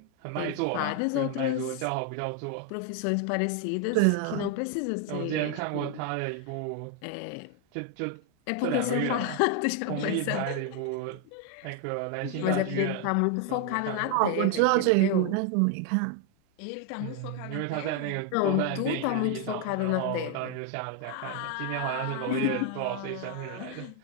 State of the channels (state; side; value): different; both; correlation 0.01